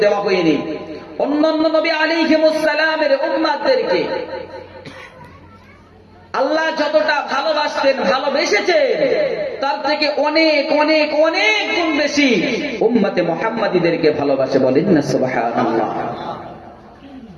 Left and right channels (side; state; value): both; identical; correlation 1.00